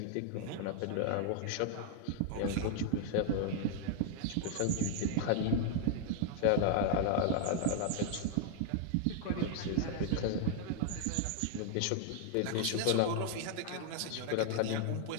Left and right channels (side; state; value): both; different; correlation 0.00